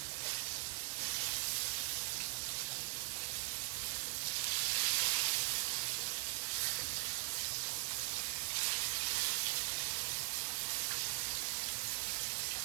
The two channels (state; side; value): silent; left; 51 dB below the other